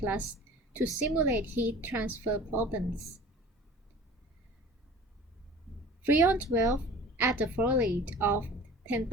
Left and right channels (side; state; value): both; normal; correlation 0.43